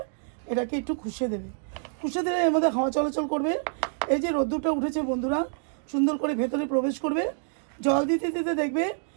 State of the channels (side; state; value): left; silent; digital silence